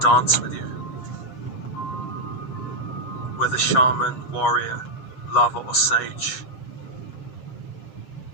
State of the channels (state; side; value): late; right; 8.2 ms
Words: with you. Whether shaman, warrior, lover or sage.